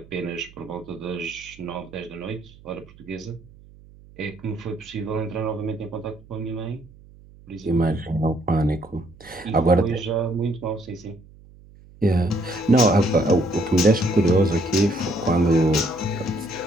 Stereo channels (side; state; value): right; noise; hum, 23 dB below the sound